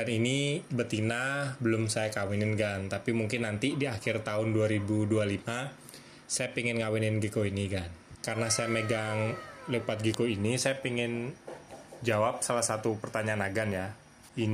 ini betina belum saya kawinin kan. Tapi mungkin nanti di akhir tahun 2025 saya pengen ngawinin gecko ini kan. Karena saya megang leopard gecko ini, saya pengen jawab salah satu pertanyaan Agan ya.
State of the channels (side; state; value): both; identical; correlation 1.00